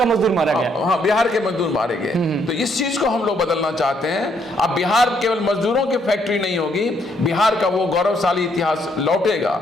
मजदूर मारा गया। हाँ, बिहार के मजदूर मारे गए। तो इस चीज को हम लोग बदलना चाहते हैं। अब बिहार केवल मजदूरों की फैक्ट्री नहीं होगी, बिहार का वो गौरवशाली इतिहास लौटेगा।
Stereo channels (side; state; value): both; normal; correlation 0.71